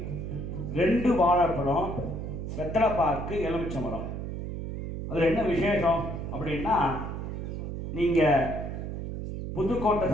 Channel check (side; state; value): right; noise; hum, 6 dB below the sound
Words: 2 வாழைப்பழம், வெத்தலைப்பாக்கு, எலுமிச்சம்பழம். அதில் என்ன விசேஷம் அப்படின்னா, நீங்கள் புதுக்கோட்டை